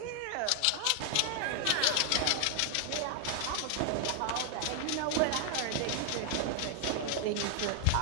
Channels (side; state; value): both; different; correlation 0.00